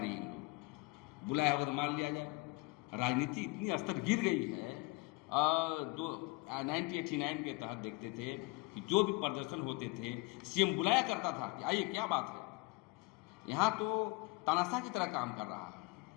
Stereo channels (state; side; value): quieter; right; 25.3 dB